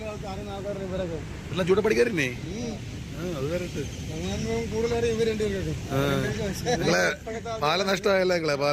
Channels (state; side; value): identical; both; correlation 1.00